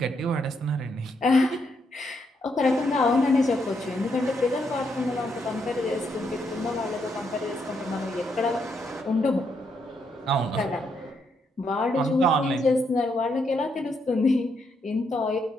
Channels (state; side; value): normal; both; correlation 0.77